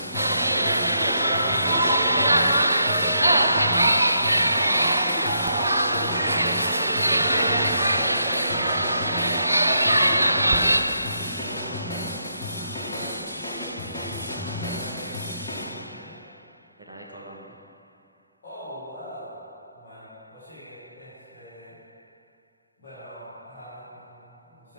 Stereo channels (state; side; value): inverted; both; correlation -0.78